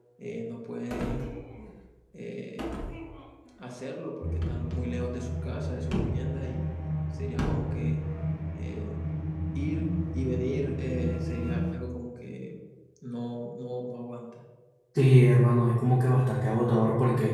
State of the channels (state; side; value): identical; both; correlation 1.00